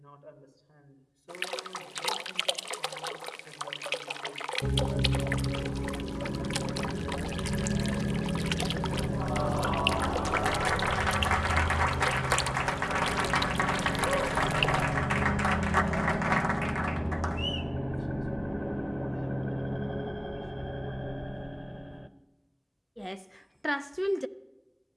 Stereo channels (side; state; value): both; identical; correlation 1.00